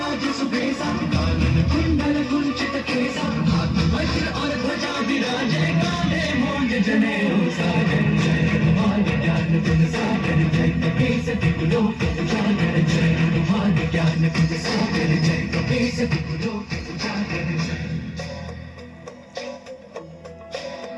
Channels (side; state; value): both; identical; correlation 1.00